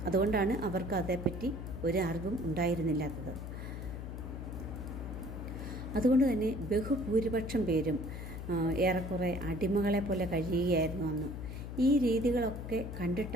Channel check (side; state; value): left; noise; hum, 7 dB below the sound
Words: അതുകൊണ്ടാണ് അവർക്ക് അതേപ്പറ്റി ഒരു അറിവും ഉണ്ടായിരുന്നില്ലാത്തത്. അതുകൊണ്ട് തന്നെ ബഹുഭൂരിപക്ഷം പേരും ഏറെക്കുറെ അടിമകളെ പോലെ കഴിയുകയായിരുന്നു അന്ന്. ഈ രീതികളൊക്കെ